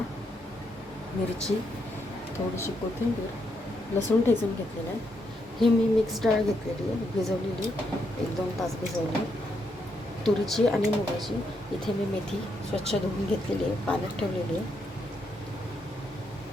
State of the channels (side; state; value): both; normal; correlation 0.79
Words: मिरची, थोडीशी कोथिंबीर, लसूण ठेचून घेतलेलं आहे. ही मी मिक्स डाळ घेतलेली आहे, भिजवलेली 1-2 तास भिजवली. तुरीची आणि मुगाची. इथे मी मेथी स्वच्छ धुवून घेतलेली आहे, पाण्यात ठेवलेली आहे.